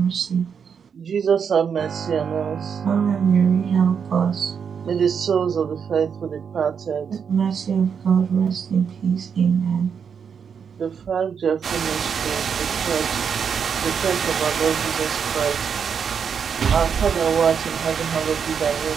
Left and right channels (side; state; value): left; quieter; 6.9 dB